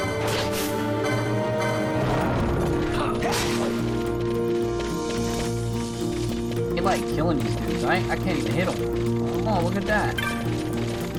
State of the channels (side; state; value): both; identical; correlation 1.00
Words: They like killing these dudes. I can't even hit them. Oh, look at that.